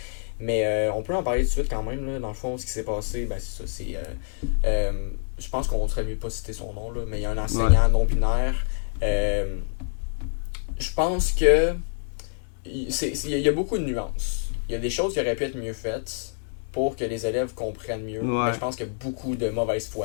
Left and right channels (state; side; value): silent; right; 61 dB below the other